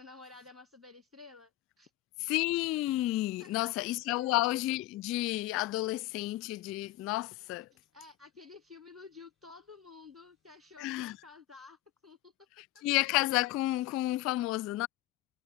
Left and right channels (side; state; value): right; quieter; 17.0 dB